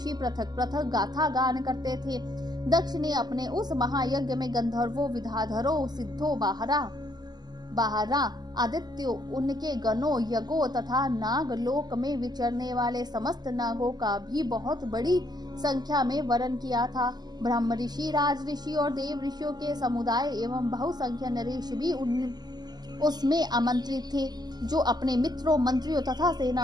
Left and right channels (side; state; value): left; late; 0.20 ms